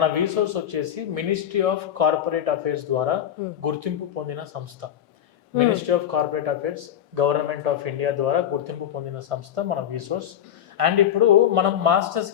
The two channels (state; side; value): quieter; right; 10.1 dB